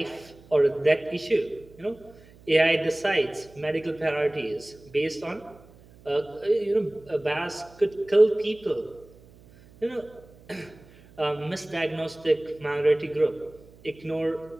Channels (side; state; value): right; noise; hum, 24 dB below the sound